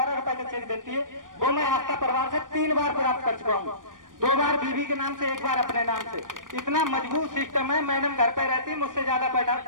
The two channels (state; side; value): late; left; 0.89 ms